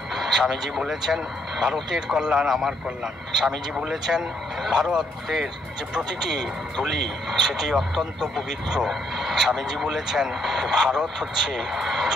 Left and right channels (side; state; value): both; normal; correlation 0.72